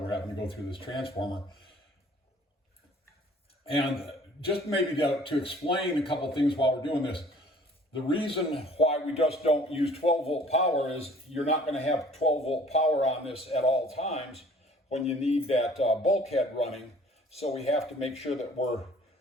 having to go through this transformer. And just maybe to explain a couple things while we're doing this. The reason why we just don't use 12 volt power is you're not going to have 12 volt power on this at all times when you need that bulkhead running. So we have to make sure that we're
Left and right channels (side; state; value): both; normal; correlation 0.53